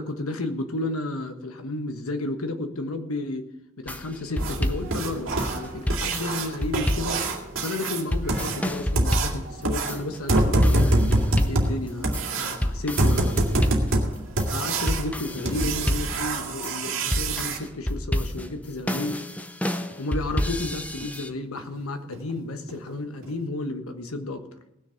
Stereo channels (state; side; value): normal; both; correlation 0.66